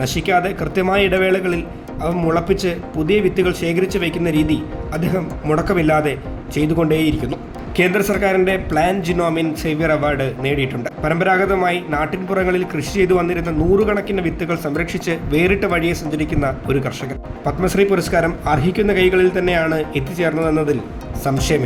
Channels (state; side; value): identical; both; correlation 1.00